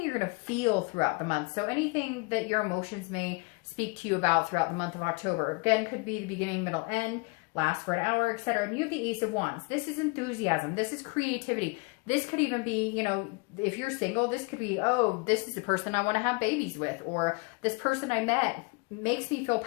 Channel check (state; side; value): quieter; right; 30.2 dB